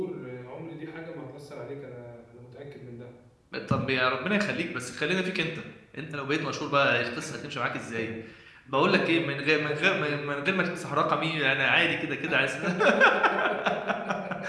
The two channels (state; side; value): identical; both; correlation 1.00